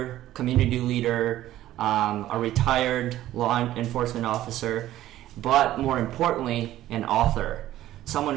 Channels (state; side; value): quieter; left; 14.0 dB